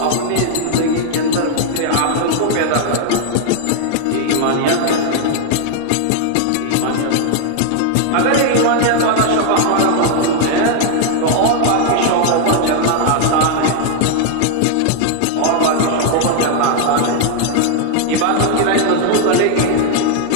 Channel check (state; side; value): different; both; correlation 0.00